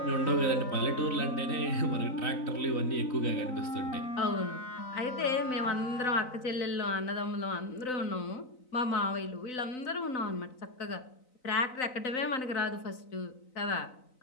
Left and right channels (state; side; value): late; right; 3.9 ms